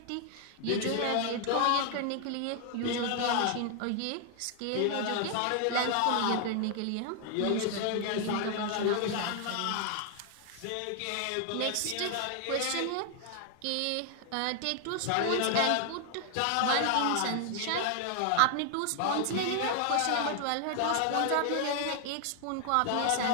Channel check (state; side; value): different; both; correlation 0.00